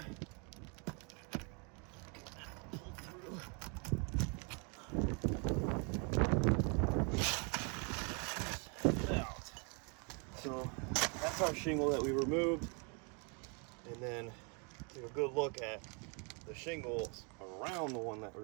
So that's our shingle that we removed, and then take a good look at the shingles around the one that we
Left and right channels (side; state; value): left; quieter; 34.9 dB